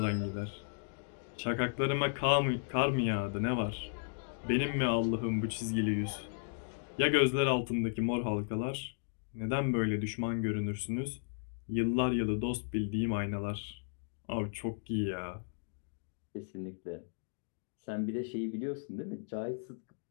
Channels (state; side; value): silent; right; digital silence